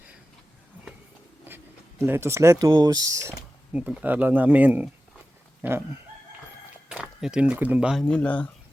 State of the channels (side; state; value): both; normal; correlation 0.94